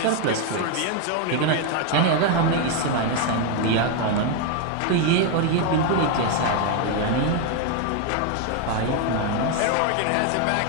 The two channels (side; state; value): both; different; correlation 0.01